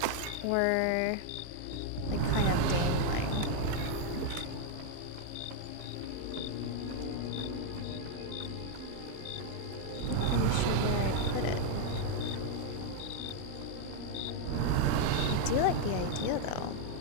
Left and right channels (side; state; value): both; different; correlation 0.00